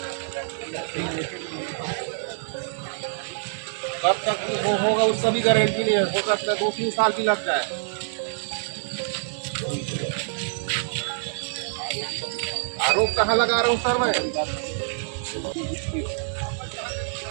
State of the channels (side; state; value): left; silent; digital silence